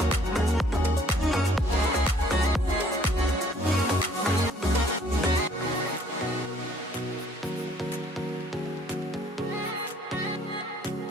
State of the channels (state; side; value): normal; both; correlation 0.61